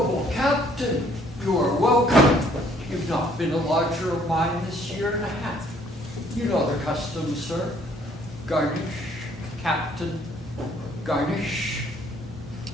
Captain, you are welcome. You've not been a lodger of mine this year and a half. You know the custom, sir. Garnish, Captain, garnish.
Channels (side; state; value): both; normal; correlation 0.62